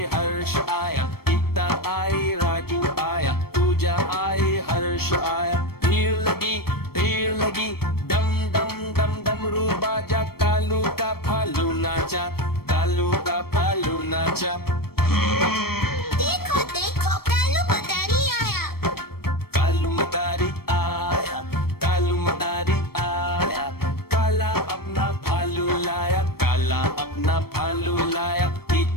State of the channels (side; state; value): right; late; 0.95 ms